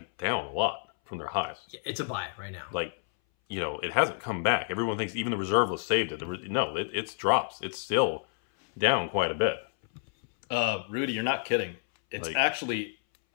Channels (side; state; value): right; silent; 58 dB below the other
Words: down a lot from their highs. Yeah, it's a buy right now. Like, you know, it hasn't come back. Everyone thinks even the reserve list saved it. No, it's drops. It's still down quite a bit. Rudy, you're not kidding. It's Like- actually